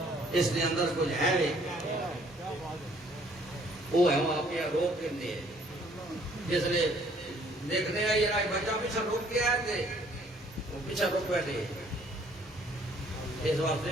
اس دے اندر کچھ ہے وے وہ ہے وہ آپ روک کے جس نے دیکھنے ہیں یہ بچہ پیچھے روک کے آئے تھے وہ پیچھے رک بیٹھے. اس واسطے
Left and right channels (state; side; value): normal; both; correlation 0.61